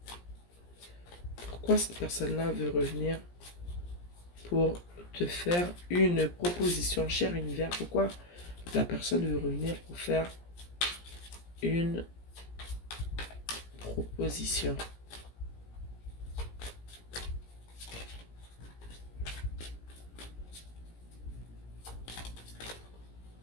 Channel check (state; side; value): late; right; 17 ms